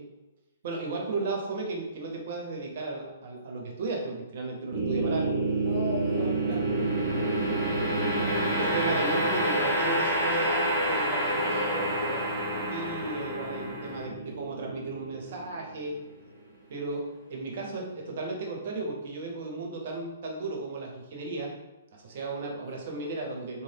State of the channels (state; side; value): inverted; both; correlation -0.48